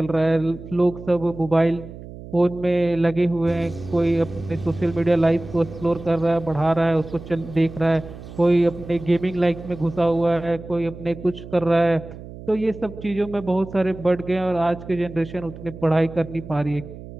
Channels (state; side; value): noise; right; hum, 14 dB below the sound